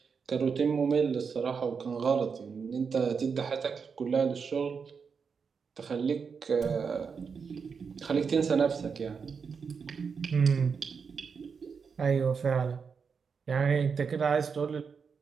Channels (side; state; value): left; quieter; 5.8 dB